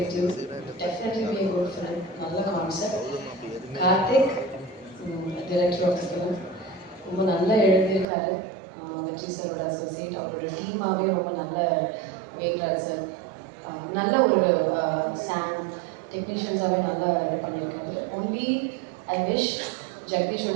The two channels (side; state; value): left; drops out; at 8.1 s